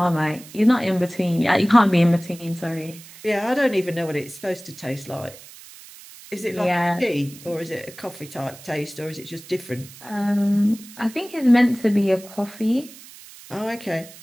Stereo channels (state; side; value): noise; right; hiss, 19 dB below the sound